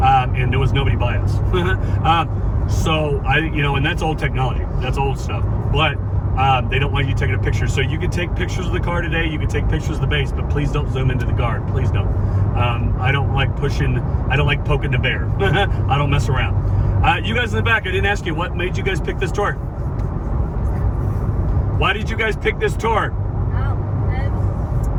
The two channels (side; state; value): both; identical; correlation 1.00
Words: and there was nobody by us. So and that's old technology, that's old stuff, but they don't want you taking a picture. So you can take pictures of the car today, you can take pictures of the base, but please don't zoom into the guard, please don't. I don't like poking the bear. I don't mess around. You guys in the back, I didn't ask you, what made you guys pick this tour? Why did you guys pick this tour?